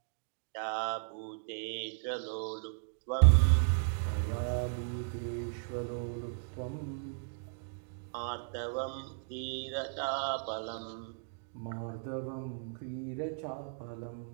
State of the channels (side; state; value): left; silent; digital silence